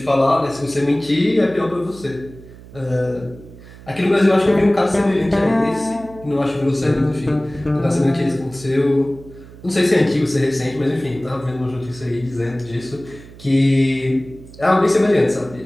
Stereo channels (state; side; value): noise; right; hum, 19 dB below the sound